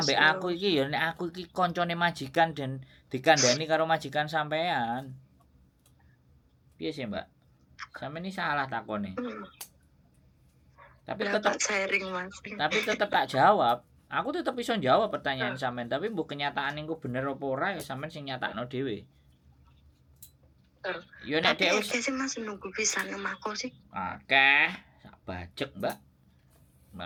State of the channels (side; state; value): both; identical; correlation 1.00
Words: semasuk. aku iki ya nek aku iki koncone majikan dan dikandani karo majikan sampean. Piye sih, Mbak? Sampeyan ini salah takone. Hmm. Tapi Lah, tetep tak sharing mas. tak jawab. Aku tetep iso jawab pertanyaan sampean, tapi mbok kenyataan engko bener apa ora ya sampean sing nyatakno dhewe. Yo nek Tapi dhek akeh sih mas nunggu bisa nemako sih. akeh sak bajek, Mbak.